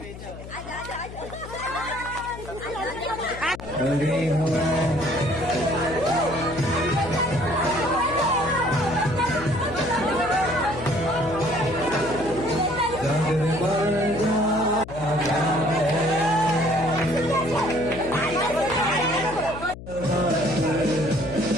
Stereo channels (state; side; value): noise; left; hum, 13 dB below the sound